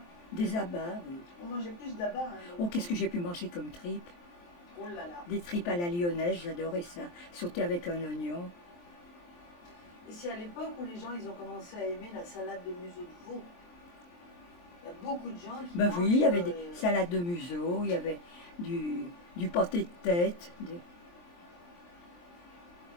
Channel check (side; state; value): right; late; 23 ms